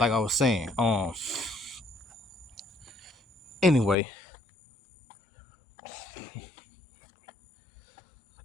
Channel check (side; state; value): right; drops out; at 4.0 s